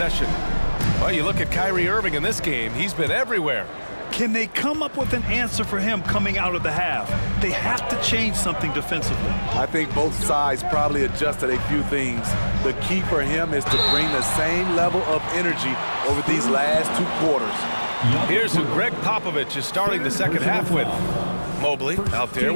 Well, you look at Kyrie Irving in this game, he's been everywhere. Can they come up with an answer for him coming out of the half? They have to change something defensively. I think both sides probably adjusted a few things. The key for him is to bring the same level of energy over these last 2 quarters. Here's who Greg Popovich is starting the second half with. Mobley out there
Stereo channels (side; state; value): both; inverted; correlation -1.00